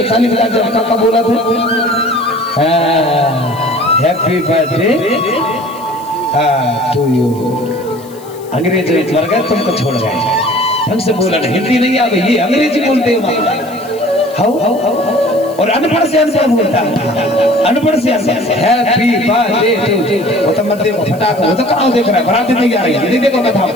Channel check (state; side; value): noise; left; hiss, 22 dB below the sound